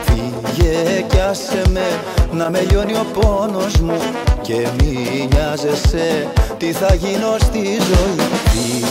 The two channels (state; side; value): identical; both; correlation 1.00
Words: Φύγε κι άσε με να με λιώνει ο πόνος μου. Και μη νοιάζεσαι τι θα γίνω στη ζωή.